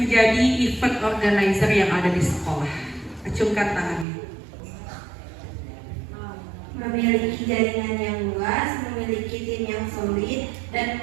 event organizer yang ada di sekolah. Acungkan tangannya. Memiliki jaringan yang luas, memiliki tim yang solid, dan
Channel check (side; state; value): left; drops out; at 4.0 s